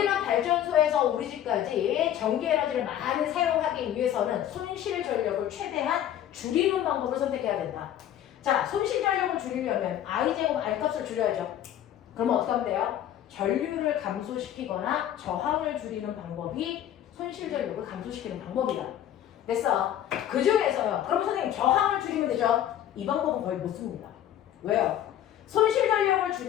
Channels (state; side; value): quieter; right; 11.2 dB